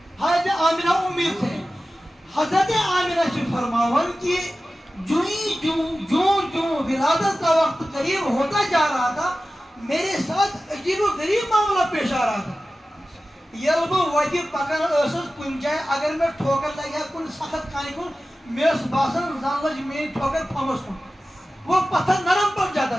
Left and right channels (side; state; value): both; normal; correlation 0.95